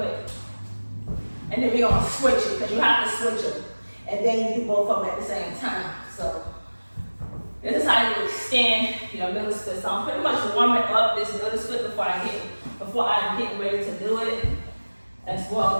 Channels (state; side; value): inverted; both; correlation -1.00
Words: and then we're gonna switch it, because you have to switch them. And then you do both of them at the same time. So this is how you extend your middle split. So I'm pretty much warming up this middle split before I'm getting ready to do it as